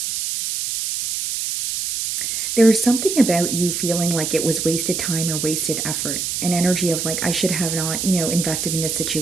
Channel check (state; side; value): noise; right; hiss, 2 dB below the sound